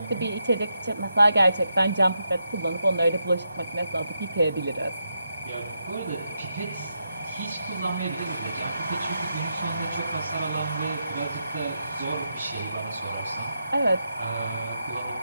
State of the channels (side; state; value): both; inverted; correlation -0.84